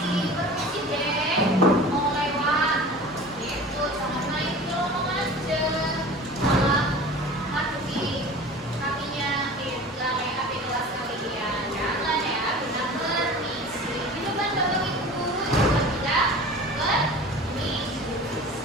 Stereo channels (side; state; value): both; normal; correlation 0.39